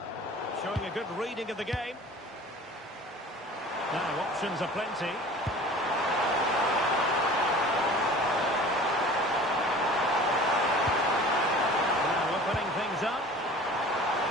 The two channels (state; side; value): normal; both; correlation 0.43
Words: Showing a good reading of the game. Now options are plenty. Now opening things up.